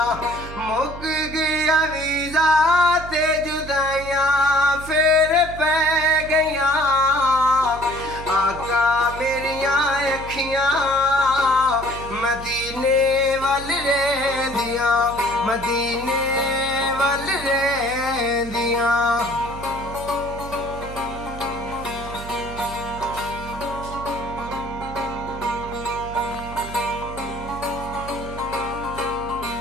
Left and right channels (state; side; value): noise; right; hum, 12 dB below the sound